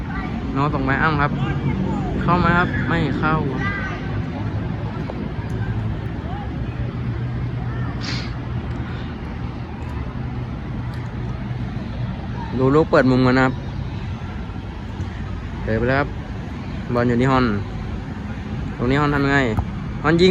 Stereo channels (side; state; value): both; identical; correlation 1.00